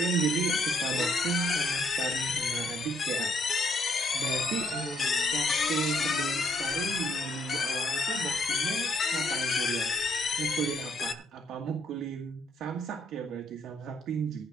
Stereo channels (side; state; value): both; normal; correlation 0.71